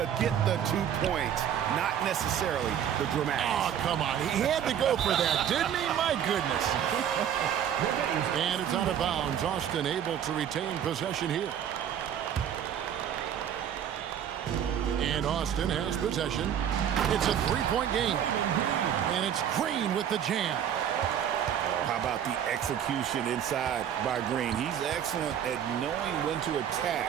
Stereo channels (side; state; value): left; quieter; 9.4 dB